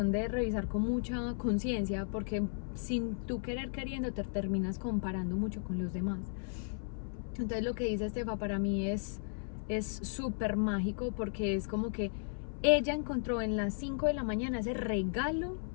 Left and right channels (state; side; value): silent; right; 54 dB below the other